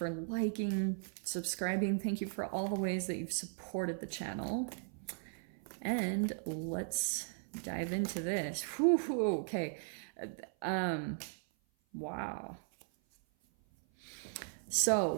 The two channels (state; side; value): silent; left; 53 dB below the other